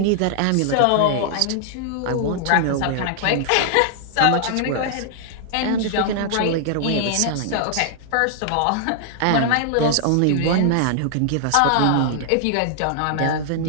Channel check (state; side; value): different; both; correlation 0.00